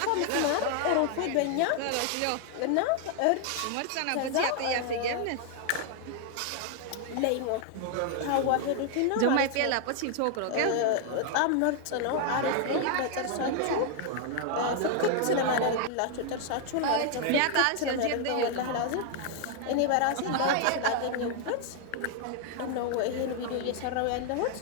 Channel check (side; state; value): both; different; correlation 0.00